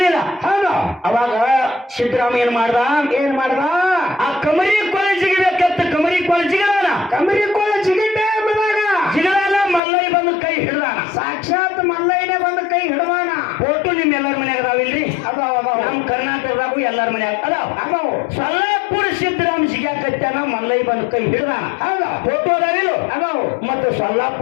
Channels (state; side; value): drops out; right; at 9.8 s